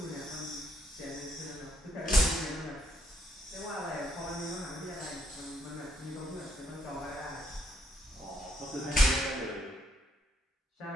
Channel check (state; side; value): normal; both; correlation 0.73